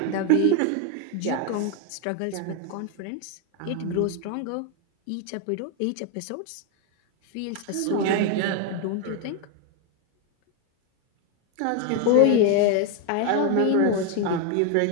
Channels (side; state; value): both; different; correlation 0.01